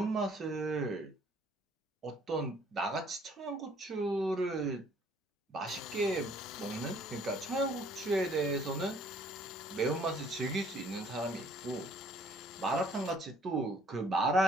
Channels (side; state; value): both; normal; correlation 0.60